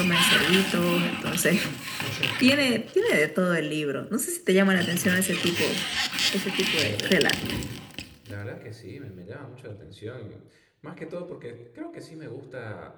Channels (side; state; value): both; identical; correlation 1.00